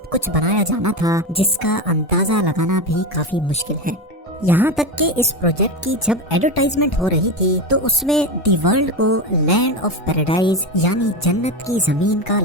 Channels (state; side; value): normal; both; correlation 0.18